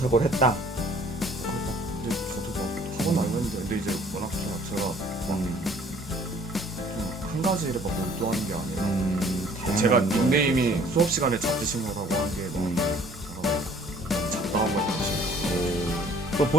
했다. 근데 저도 막 학원 다녔는데 근데 이제 워낙 제가 한 가지 일에 막 몰두하는 게 아니라 제가 닉네임이 수업 시간에 잡지신거라고 하는 게막 잡다한 걸 사실 또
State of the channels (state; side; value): normal; both; correlation 0.56